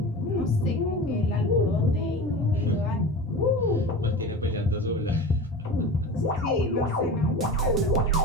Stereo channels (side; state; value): both; normal; correlation 0.32